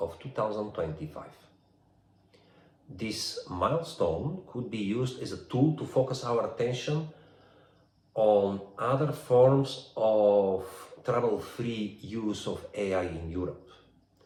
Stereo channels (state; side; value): identical; both; correlation 1.00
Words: 2025. This milestone could be used as a tool to focus our attention on other forms of trouble-free use of AI in Europe.